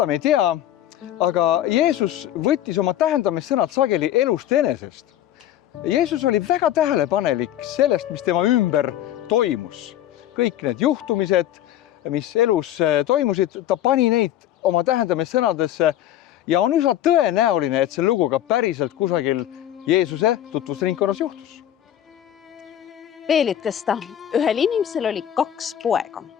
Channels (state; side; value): quieter; right; 11.9 dB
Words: me ei tea, aga Jeesus võttis oma tähendamissõnad sageli elust enesest. Jeesus oli väga tähelepanelik sellest, mis tema ümber toimus. Kõik need juhtumised, mis elus toimusid, ta pani neid oma tähendamissõnadesse ja on üsna tõenäoline, et see lugu ka päriselt kusagil Jeesuse tutvusringkonnas juhtus. Veel ütles ta, ühel inimesel oli 2 poega.